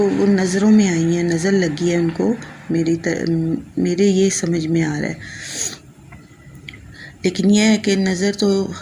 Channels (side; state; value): both; identical; correlation 1.00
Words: वो नज़रों में आई हैं, नज़र लगी है उनको, मेरे ये समझ में आ रहा है। लेकिन यह है कि नज़र तो